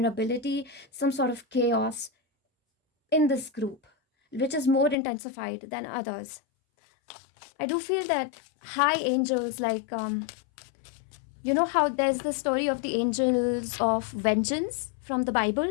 some sort of chaos in this group, which is more intensified than others. I do feel that high angels, like how there's the story of the angels of vengeance from the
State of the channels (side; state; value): right; drops out; at 5.0 s